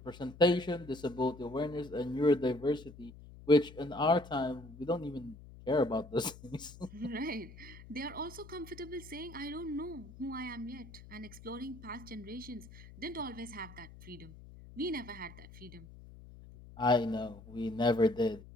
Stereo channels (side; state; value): left; noise; hum, 17 dB below the sound